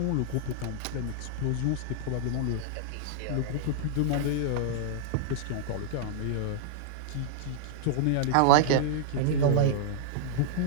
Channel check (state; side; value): different; both; correlation -0.01